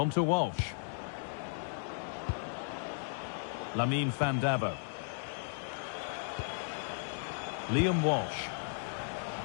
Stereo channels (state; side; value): silent; right; digital silence